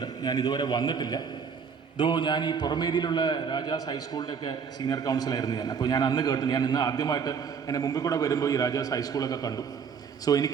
ഞാൻ ഇതുവരെ വന്നിട്ടില്ല. ഞാൻ ഈ പുറമേരിയിലുള്ള രാജാസ് ഹൈസ്കൂളിൻ്റെയൊക്കെ സീനിയർ കൗൺസിലായിരുന്നു ഞാൻ. അപ്പോൾ ഞാൻ അന്ന് കേട്ടു. ഞാൻ ഇന്ന് ആദ്യമായിട്ട് എൻ്റെ മുമ്പിൽ കൂടെ വരുമ്പോൾ ഈ രാജാസ് ഹൈസ്കൂളൊക്കെ കണ്ടു. സോ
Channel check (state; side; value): quieter; left; 6.4 dB